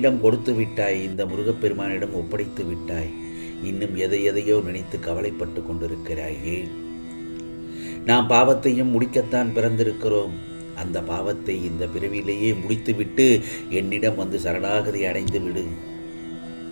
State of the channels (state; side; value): inverted; both; correlation -1.00